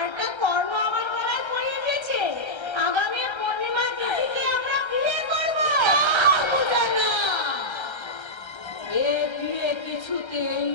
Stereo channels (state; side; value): late; right; 1.3 ms